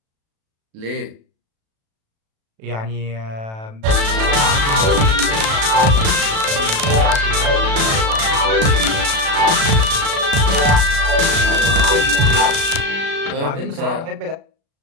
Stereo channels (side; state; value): left; late; 36 ms